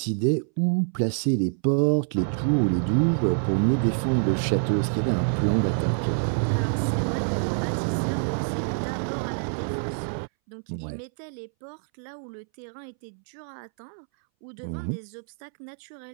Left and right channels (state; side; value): silent; left; 61 dB below the other